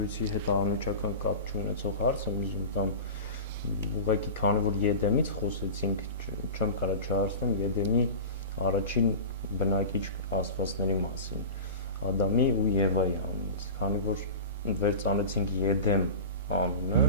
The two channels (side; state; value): both; inverted; correlation -0.31